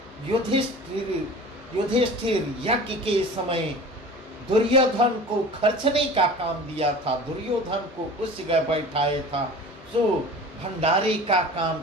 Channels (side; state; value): both; normal; correlation 0.39